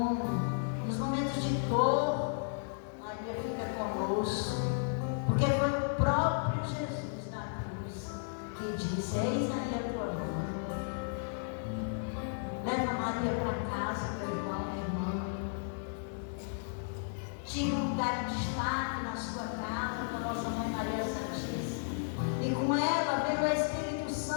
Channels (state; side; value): silent; right; digital silence